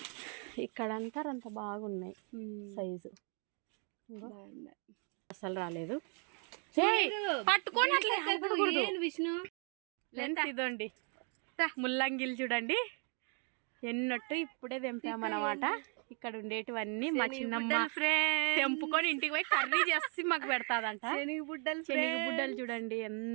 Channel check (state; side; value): quieter; left; 39.0 dB